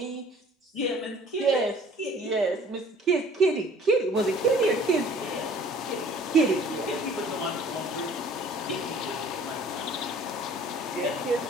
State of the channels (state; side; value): normal; both; correlation 0.52